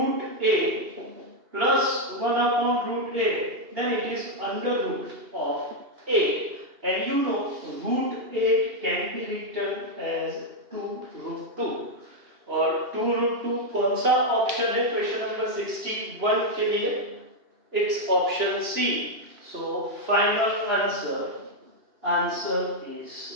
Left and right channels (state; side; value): late; left; 2.8 ms